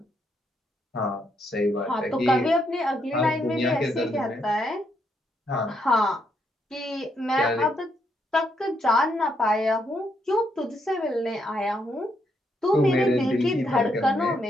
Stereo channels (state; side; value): normal; both; correlation 0.77